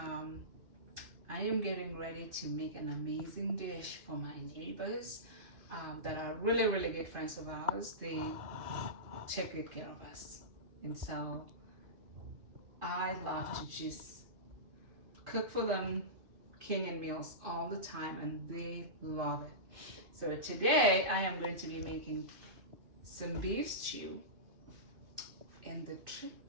am getting ready to make an amazing dish for my neighbors that are really good friends of ours. They take good care of us, and so I love to just cook for them Kenyan meals all the time, and they love it. So today I am going to be making some beef stew, and the trick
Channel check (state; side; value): late; left; 2.5 ms